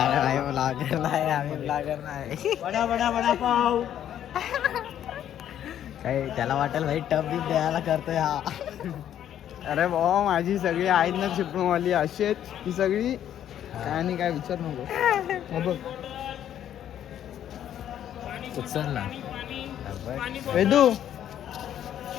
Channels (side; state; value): right; quieter; 10.6 dB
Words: नाही आम्ही ब्लॉगर नाही. बडा बडा बडा पाव. काही त्याला वाटेल भाई टप बी द्यायला करतोय हा. अरे भाऊ माझी सगळी आहेत ना चिपळूणवाली अशी आहेत ही सगळी. काय नाही काय विचार नको. बघ उचलला वेदू